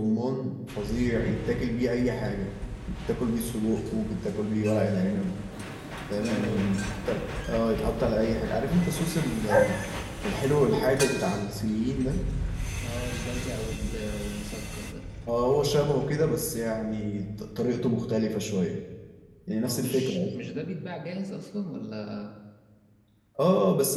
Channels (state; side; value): identical; both; correlation 1.00